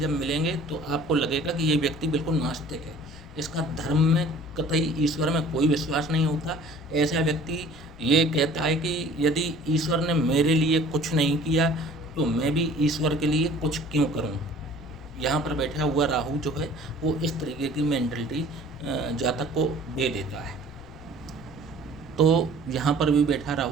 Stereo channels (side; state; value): left; noise; rumble, 20 dB below the sound